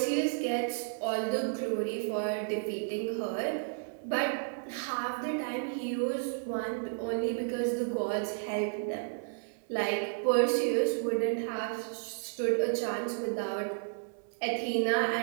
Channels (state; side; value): silent; left; 56 dB below the other